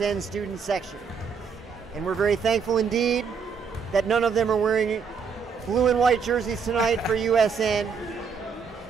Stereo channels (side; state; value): left; quieter; 5.9 dB